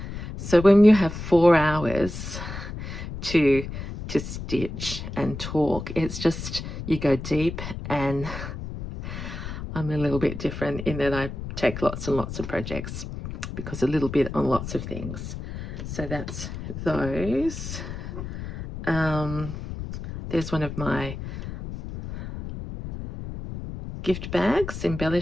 So when you have 4 hours to stitch and talk, it's just, you go deep, and I'm a little bit different in that I take lots and lots of projects because a little bit on lots of things. So that's those. There's one of my gift bags,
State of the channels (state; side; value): noise; left; rumble, 8 dB below the sound